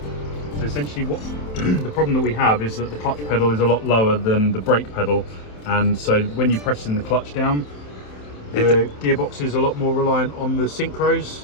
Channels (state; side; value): late; right; 27 ms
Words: So essentially what the problem that we have is that the clutch pedal is a lot lower than the brake pedal, and so when you're pressing the clutch down, the gearbox is a lot more reliant on the